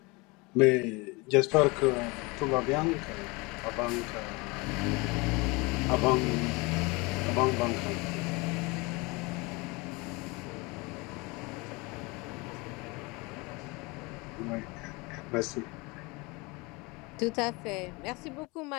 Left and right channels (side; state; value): right; quieter; 26.1 dB